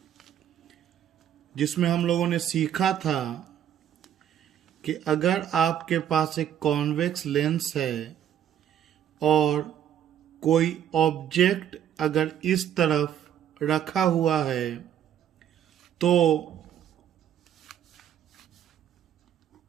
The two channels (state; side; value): quieter; left; 10.1 dB